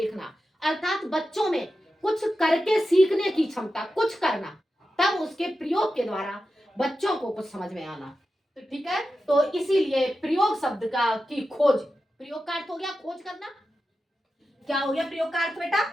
अर्थात बच्चों में कुछ करके सीखने की क्षमता, कुछ करना, तब उसके प्रयोग के द्वारा बच्चों को कुछ समझ में आना। तो ठीक है, तो इसीलिए प्रयोग शब्द का की खोज, प्रयोग का अर्थ हो गया खोज करना। क्या हो गया प्रयोग का अर्थ बेटा?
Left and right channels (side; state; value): both; normal; correlation 0.91